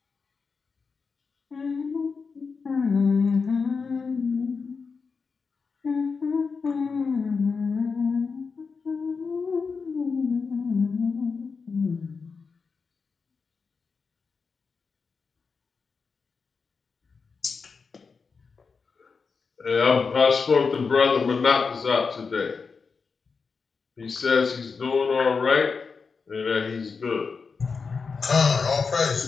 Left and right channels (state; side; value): quieter; right; 5.0 dB